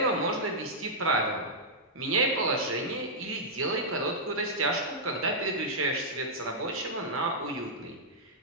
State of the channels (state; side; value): normal; both; correlation -0.10